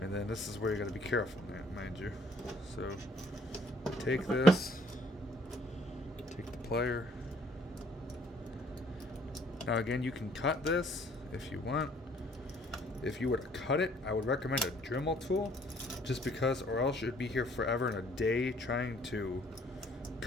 then this is where you got to be careful, mind you. So take this, take the plier. Now again, you can cut this if you want. If you were to cut it, I would recommend a Dremel tool, just because, or else you'd be here forever and a day trying to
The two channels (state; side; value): normal; both; correlation 0.61